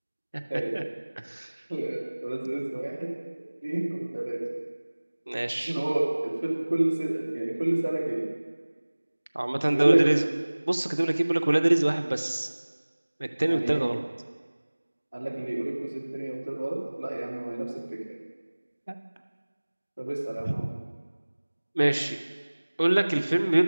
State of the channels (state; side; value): inverted; both; correlation -1.00